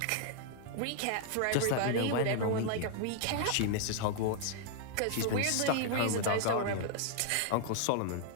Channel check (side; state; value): both; different; correlation 0.00